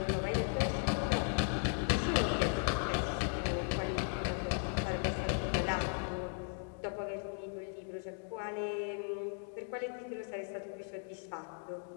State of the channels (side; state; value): right; silent; 53 dB below the other